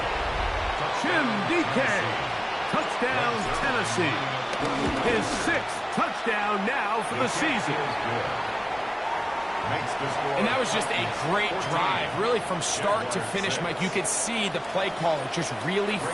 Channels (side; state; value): both; identical; correlation 1.00